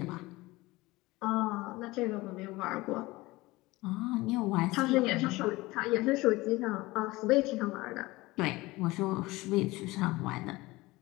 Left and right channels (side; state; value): right; quieter; 20.6 dB